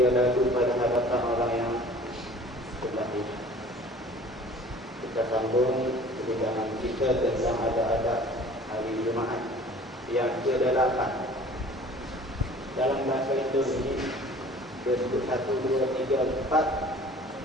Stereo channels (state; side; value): normal; both; correlation 0.47